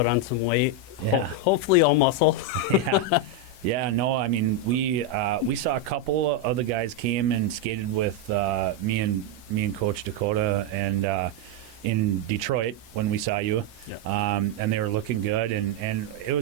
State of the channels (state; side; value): normal; both; correlation 0.03